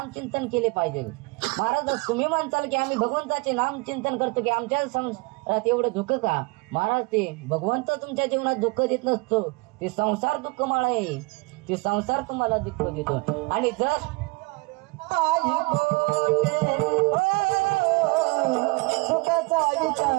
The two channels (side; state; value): left; quieter; 27.4 dB